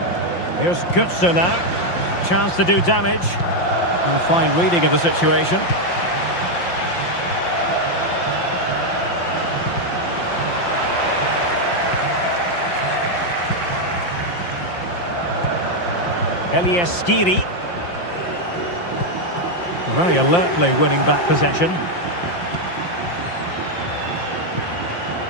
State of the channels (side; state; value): right; late; 5.7 ms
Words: Here's Götze now. Chance to do damage. A fine reading of the situation. Elias Skiri. Very alertly winning back possession.